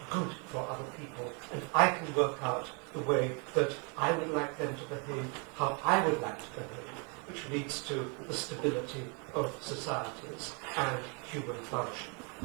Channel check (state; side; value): quieter; left; 35.0 dB